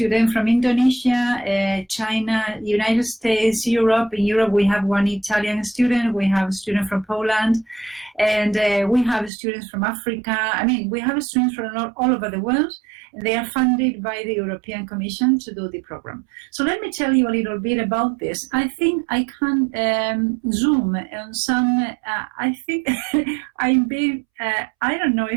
from Indonesia, China, United States, Europe. In Europe, we have one Italian student. We have a student from Poland. And we have students from Africa. I mean, we have students from all over the world. And they are funded by the European Commission to do the program. So let me tell you a little bit about this. I think I can zoom on some, I think I'm being, I don't know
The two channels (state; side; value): drops out; left; at 9.3 s